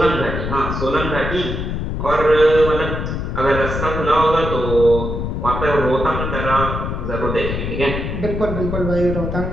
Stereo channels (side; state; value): left; noise; rumble, 3 dB below the sound